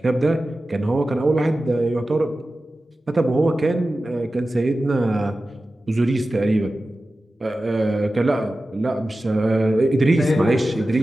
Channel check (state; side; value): normal; both; correlation 0.94